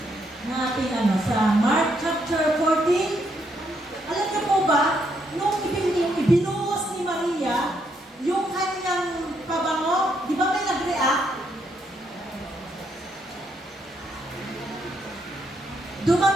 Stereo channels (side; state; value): both; normal; correlation 0.75